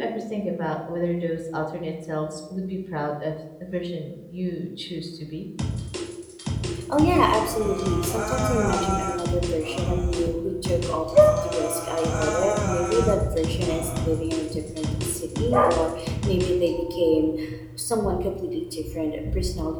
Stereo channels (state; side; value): identical; both; correlation 1.00